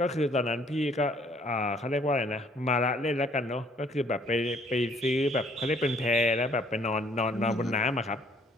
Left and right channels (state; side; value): normal; both; correlation 0.61